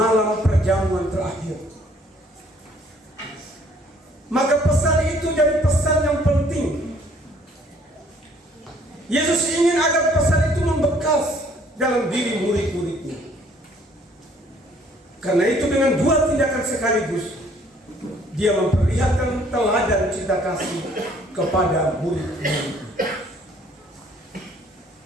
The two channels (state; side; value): normal; both; correlation 0.60